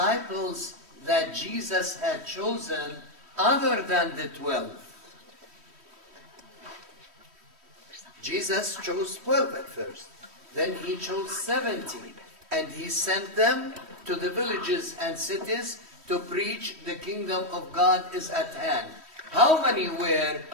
that Jesus had chosen other than the 12. Jesus chose 12 at first. Then he chose 70. And he sent them to the villages and cities to preach the kingdom of God is at hand. How many were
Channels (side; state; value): left; late; 3.1 ms